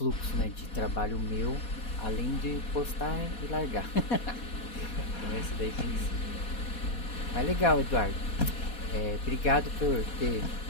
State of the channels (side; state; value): right; late; 4.2 ms